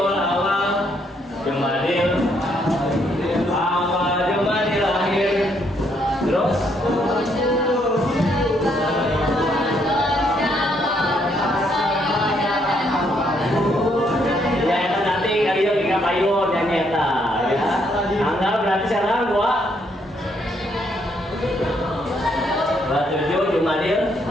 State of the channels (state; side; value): normal; both; correlation 0.72